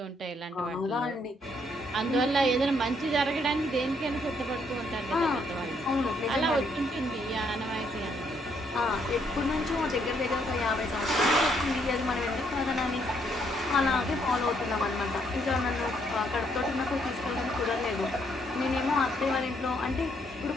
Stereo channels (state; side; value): normal; both; correlation 0.71